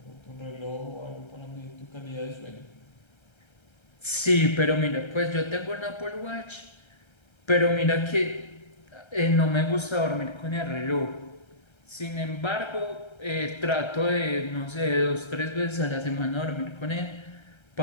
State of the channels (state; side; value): late; right; 1.3 ms